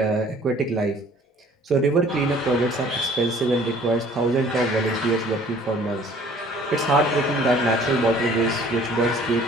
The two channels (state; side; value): normal; both; correlation 0.54